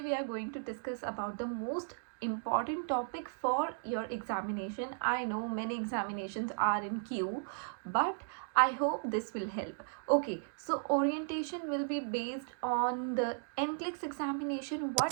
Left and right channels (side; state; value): left; silent; digital silence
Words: we are going to discuss about the most important topic for your examination. I know many examinations are in queue, but I hope this will help. Okay, so orientation will be based on the NCLEX examination.